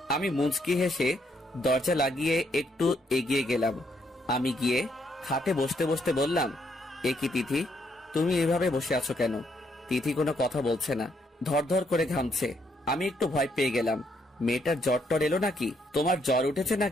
আমি মুচকি হেসে দরজা লাগিয়ে একটু এগিয়ে গেলাম। আমি গিয়ে খাটে বসতে বসতে বললাম, এ কি তিথি, তুমি এভাবে বসে আছো কেন? তিথি কোনো কথা বলছে না, ধরধর করে ঘামছে। আমি একটু ভয় পেয়ে গেলাম। মেয়েটার জ্বর টর এলো নাকি? তোমার জ্বর উঠেছে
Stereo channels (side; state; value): both; normal; correlation 0.74